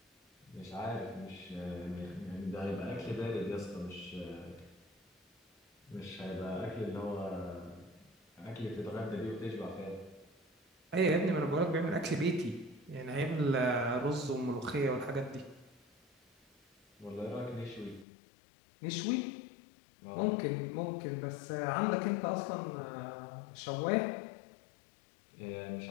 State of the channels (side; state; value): right; drops out; at 18.1 s